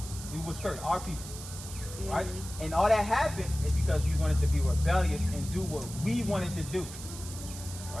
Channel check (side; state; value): right; noise; hiss, 12 dB below the sound